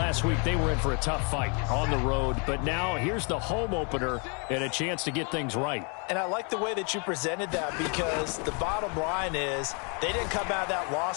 week they were in for a tough fight on the road. But now here's the home opener and a chance to get things right. And I like the way that you presented that, because the bottom line is they didn't come out of that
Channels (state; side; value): quieter; right; 36.4 dB